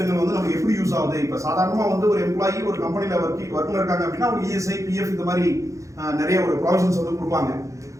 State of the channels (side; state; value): left; late; 0.15 ms